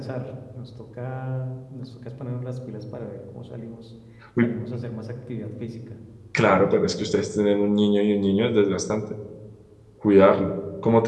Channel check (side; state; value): both; identical; correlation 1.00